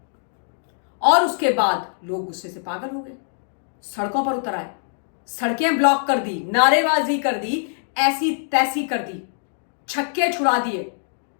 और उसके बाद लोग गुस्से से पागल हो गए, सड़कों पर उतर आए, सड़कें ब्लॉक कर दी, नारेबाजी कर दी, ऐसी तैसी कर दी, छक्के छुड़ा दिए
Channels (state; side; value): silent; right; digital silence